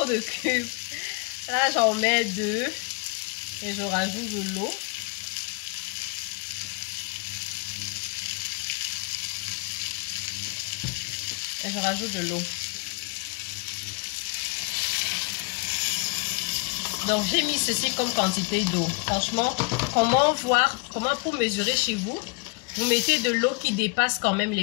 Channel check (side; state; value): right; quieter; 31.1 dB